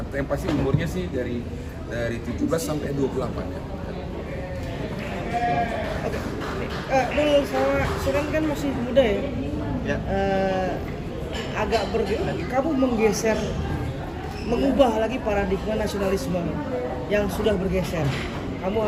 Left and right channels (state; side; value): identical; both; correlation 1.00